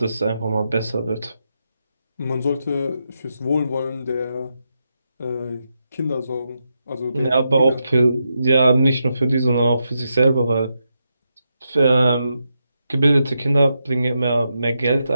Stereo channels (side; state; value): both; inverted; correlation -0.85